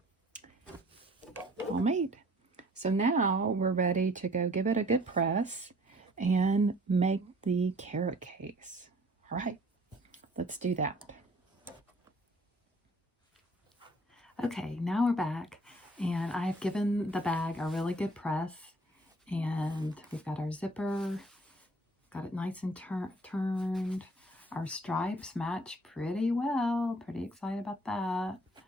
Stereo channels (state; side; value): normal; both; correlation 0.55